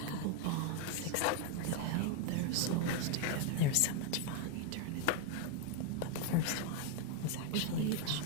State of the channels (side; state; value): both; different; correlation 0.01